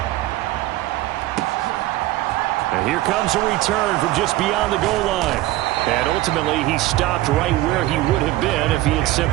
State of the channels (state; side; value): quieter; left; 16.8 dB